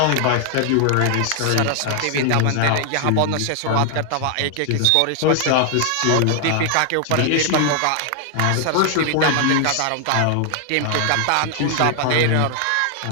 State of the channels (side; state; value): both; different; correlation 0.00